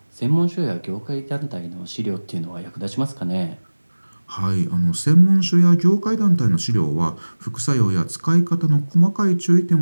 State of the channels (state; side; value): inverted; both; correlation -1.00